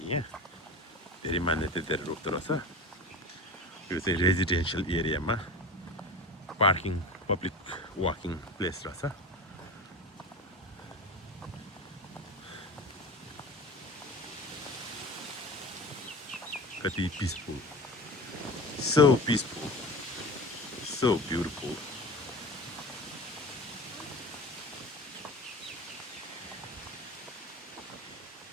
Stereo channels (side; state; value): both; normal; correlation 0.33